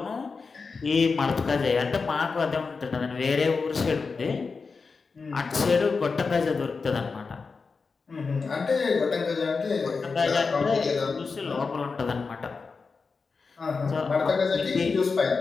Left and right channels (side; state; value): right; quieter; 4.7 dB